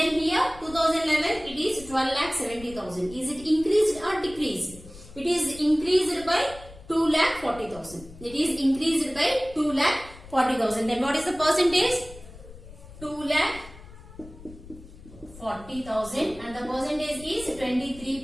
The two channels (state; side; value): noise; left; rumble, 18 dB below the sound